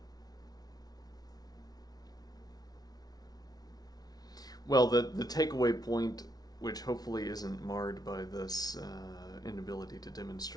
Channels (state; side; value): late; right; 0.19 ms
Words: Well, the takeaway point, which hopefully isn't marred by this inability to